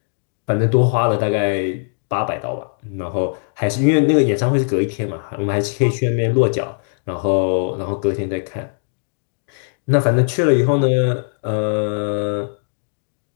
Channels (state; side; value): silent; right; digital silence